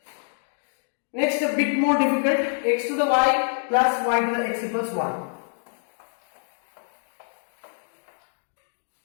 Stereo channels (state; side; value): silent; right; digital silence